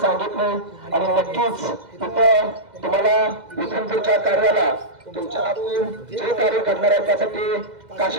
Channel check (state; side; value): late; left; 2.0 ms